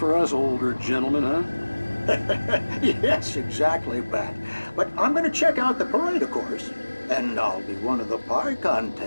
us older gentlemen, huh? Yes, exactly, Pat. But I'm going to check out the parade, of course. And I'll be one of the pie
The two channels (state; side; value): inverted; both; correlation -1.00